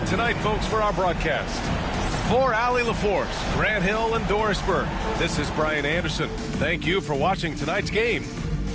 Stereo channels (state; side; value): identical; both; correlation 1.00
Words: tonight, folks, for our broadcast. For Allie LaForce, Grant Hill, and Doris Burke, this is Brian Anderson. Thank you for watching tonight's game.